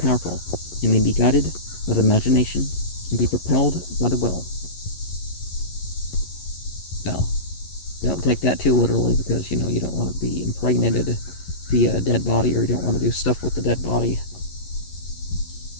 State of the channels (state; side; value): late; right; 11 ms